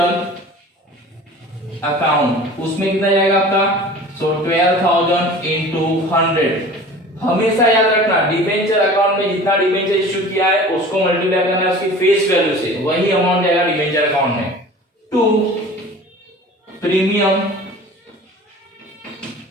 account, उसमें कितना जाएगा आपका, सो 12,000 into 100. हमेशा याद रखना डिबेंचर अकाउंट में जितना डिबेंचर इश्यू किया है उसको मल्टीप्लाई करना है उसकी फेस वैल्यू से, वही अमाउंट जाएगा डिबेंचर अकाउंट में. To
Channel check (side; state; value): both; normal; correlation 0.41